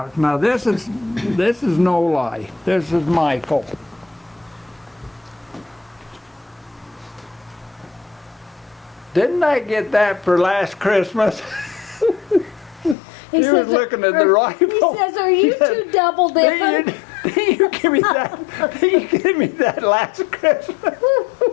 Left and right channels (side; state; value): right; drops out; at 13.0 s